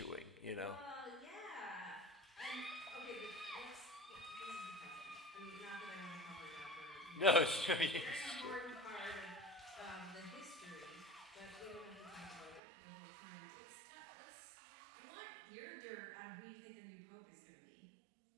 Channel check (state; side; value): drops out; left; at 12.6 s